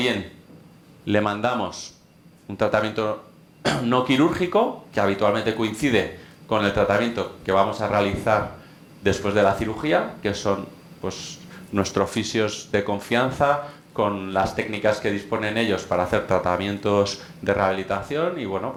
le mandamos un tratamiento no quirúrgico, que habitualmente coincide con el tratamiento que vamos a realizar después de la cirugía, que son pues nuestros fisios de confianza, con las técnicas que disponen ellos para hacer tratamientos de rehabilitación, y bueno,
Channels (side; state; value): both; identical; correlation 1.00